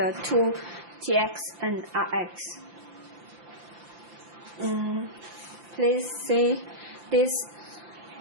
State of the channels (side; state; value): left; late; 5.8 ms